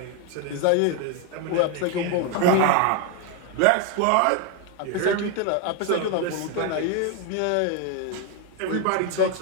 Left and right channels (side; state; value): both; different; correlation 0.01